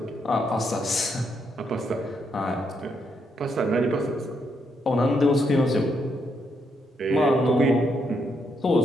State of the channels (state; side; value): normal; both; correlation 0.78